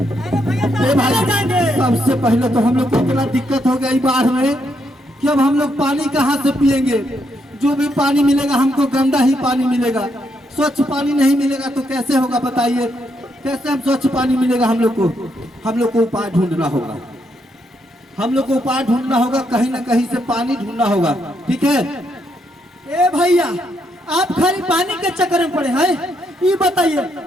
अरे भाई सबसे पहले तो हम लोग को इतना दिक्कत हो गई बाढ़ में कि अब हम लोग पानी कहाँ से पिएंगे। जो भी पानी मिलेगा हमको गंदा ही पानी मिलेगा, स्वच्छ पानी नहीं मिलेगा तो कैसे होगा बताइए। कैसे हम स्वच्छ पानी मिलेगा हम लोग को उपाय ढूंढना होगा, हम लोग को उपाय ढूंढना होगा, कहीं ना कहीं से पानी ढूंढना होगा, ठीक है। ए भैया आप खाली पानी के चक्कर में पड़े हैं, ये बताइए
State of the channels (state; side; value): normal; both; correlation 0.77